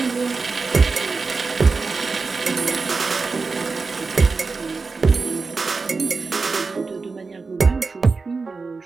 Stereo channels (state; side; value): quieter; left; 4.3 dB